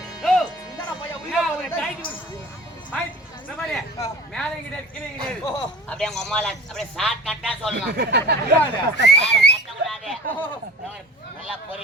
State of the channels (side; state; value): both; normal; correlation 0.42